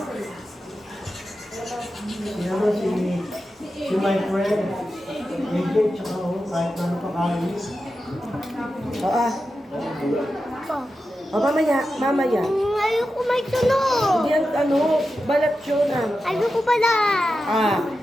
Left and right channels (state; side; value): normal; both; correlation 0.91